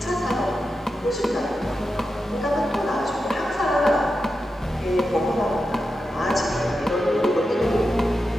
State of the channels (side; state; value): both; normal; correlation 0.90